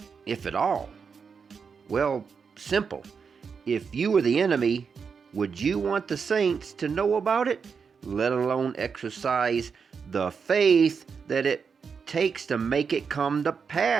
if at all? Well, simple. If you were the enemy, would you want the saints to know about it, let alone exercise the faith that it takes to make it come to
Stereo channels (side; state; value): left; quieter; 5.9 dB